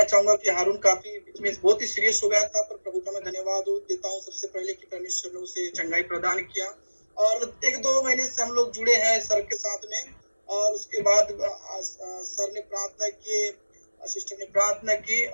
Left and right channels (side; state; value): both; inverted; correlation -1.00